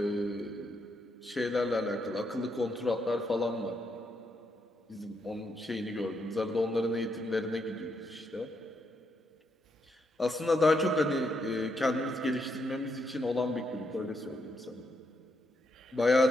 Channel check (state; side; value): normal; both; correlation 0.78